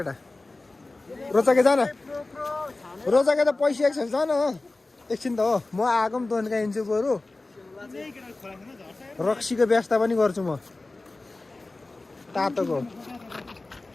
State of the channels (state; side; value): quieter; right; 3.2 dB